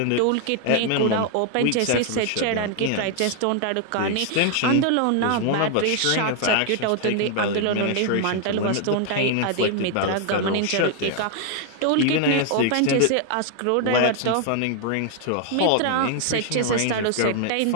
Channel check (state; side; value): different; both; correlation 0.00